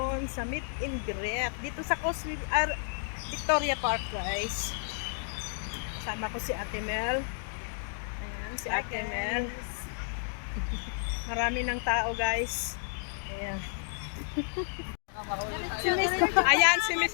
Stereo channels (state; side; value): silent; right; digital silence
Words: sa meet and greet dito sa Victoria Park guys. Kasama ko si Ate Mel. Ayan, si Ate Mel. Marami ng tao guys. Ayan. Ayan si